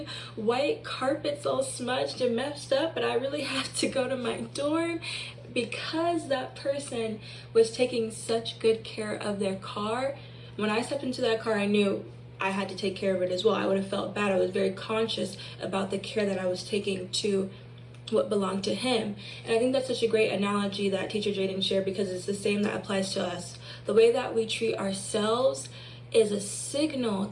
white carpets all smudged and messed up, but I really have to go to my dorm. Because that person was taking such good care of their car, when I stepped into that car, I knew I had to take care of it as well. I would have felt bad. I was very conscious about the care that I was taking to what belonged to him. And I think that's such a great analogy that teacher Jaden shared, because it's the same that applies to us. The way that we treat ourselves is a signal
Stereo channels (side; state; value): both; identical; correlation 1.00